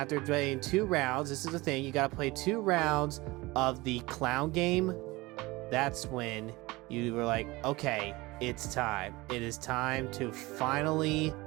playing 2 rounds, this is the thing, you gotta play 2 rounds of the clown game. That's when you were like, okay, it's time. It is time to finally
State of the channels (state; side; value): quieter; left; 21.6 dB